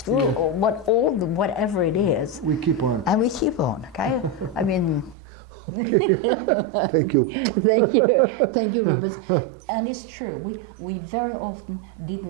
whatever it is. We keep on. And we keep on, okay? I mean, Thank you. thank you, Rubens. And it's true, we very often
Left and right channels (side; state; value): left; drops out; at 5.2 s